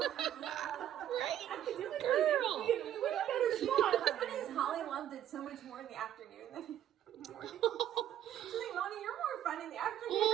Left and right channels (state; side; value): quieter; left; 11.0 dB